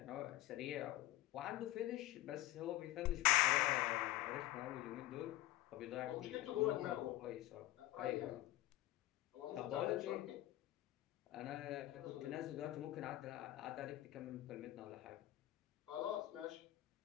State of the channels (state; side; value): quieter; right; 16.5 dB